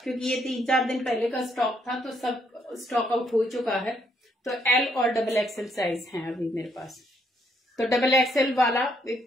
क्योंकि ये 3-4 दिन पहले का स्टॉक था, तो सब स्टॉक आउट हो चुका है। तो L और डबल एक्सएल साइज हैं अभी मेरे पास। तो डबल एक्सएल वाला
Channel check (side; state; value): both; normal; correlation 0.72